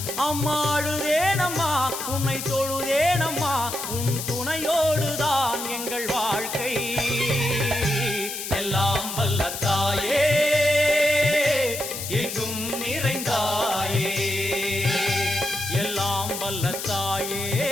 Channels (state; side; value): noise; left; hiss, 6 dB below the sound